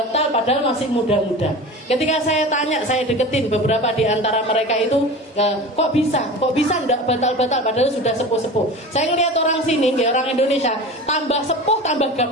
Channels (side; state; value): both; normal; correlation 0.33